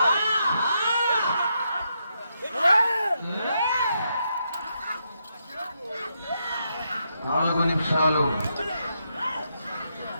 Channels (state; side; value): inverted; both; correlation -0.81